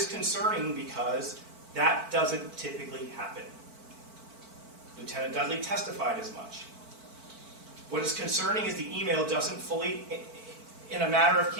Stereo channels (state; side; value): late; left; 4.5 ms